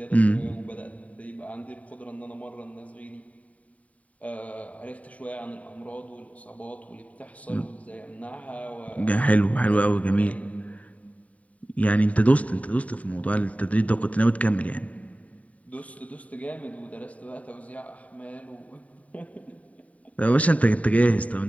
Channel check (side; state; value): right; late; 0.068 ms